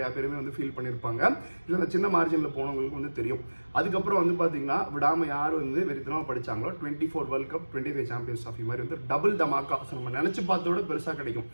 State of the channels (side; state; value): both; inverted; correlation -1.00